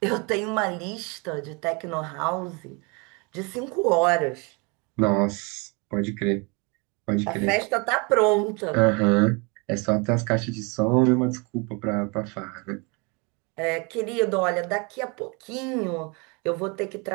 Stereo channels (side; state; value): left; quieter; 30.5 dB